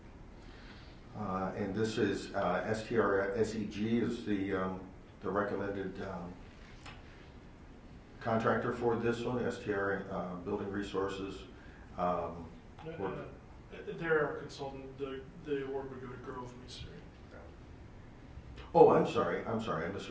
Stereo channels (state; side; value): identical; both; correlation 1.00